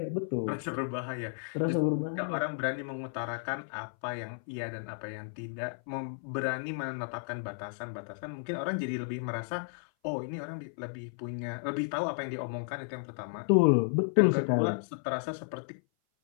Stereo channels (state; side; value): silent; right; 56 dB below the other